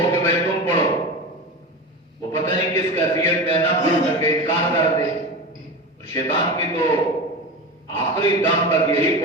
کہ بھائی تم پڑھو، وہ پتہ نہیں کس کیفیت میں نہ پڑھ سکے، انکار کر دے۔ اور شیطان کی تو آخری دم تک یہی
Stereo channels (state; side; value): normal; both; correlation 0.26